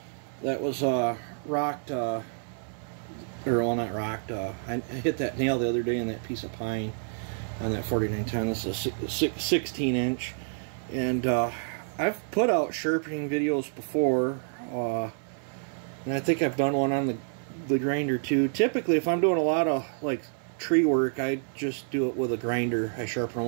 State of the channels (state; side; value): silent; left; 59 dB below the other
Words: that was rocked, or well, not rocked. I hit that nail the other day in that piece of pine on that 4910. This is a 16 inch, and I've put out sharpening videos before, and I think I've done one on the grinder too. Typically, if I'm doing a lot of like tree work, I just do it with a grinder. I sharpen